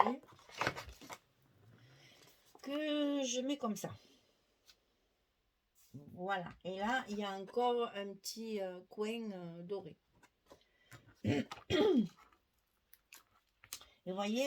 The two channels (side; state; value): both; identical; correlation 1.00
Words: que je mets comme ça. Voilà, et là, il y a encore un petit coin doré. Et vous